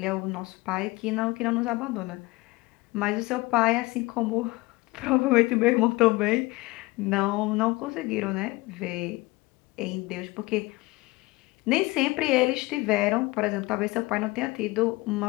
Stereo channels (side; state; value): right; quieter; 22.1 dB